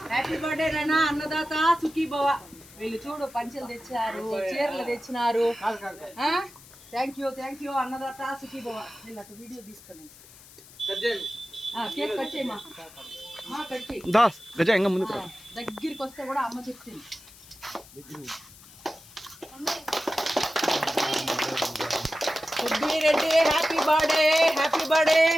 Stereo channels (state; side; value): noise; left; hiss, 21 dB below the sound